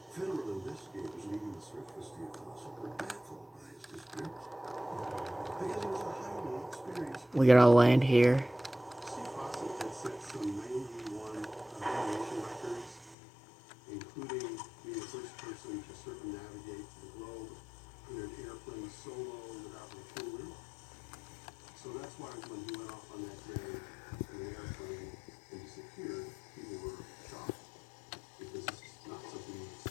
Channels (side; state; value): right; drops out; at 13.2 s